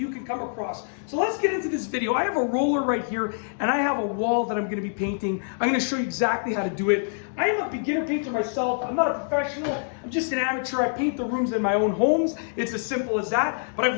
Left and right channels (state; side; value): silent; right; digital silence